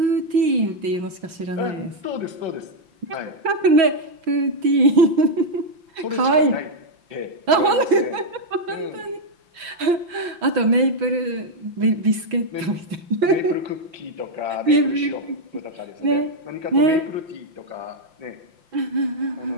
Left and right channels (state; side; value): late; left; 6.2 ms